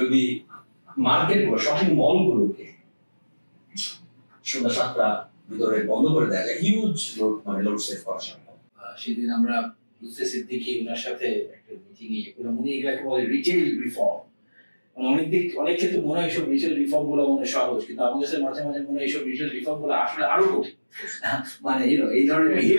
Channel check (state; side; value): inverted; both; correlation -1.00